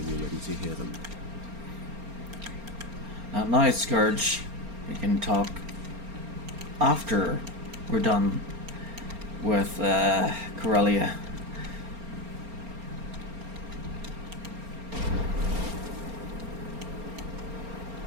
you're ready to hear them. Not now, Scourge. We can talk after we're done with Corellia.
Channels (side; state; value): left; late; 4.3 ms